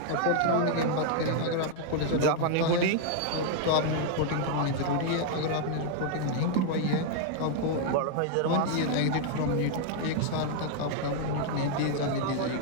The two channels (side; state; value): both; different; correlation 0.00